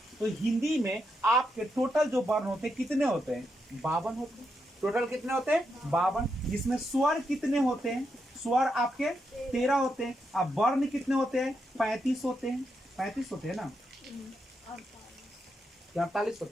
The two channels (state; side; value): normal; both; correlation 0.83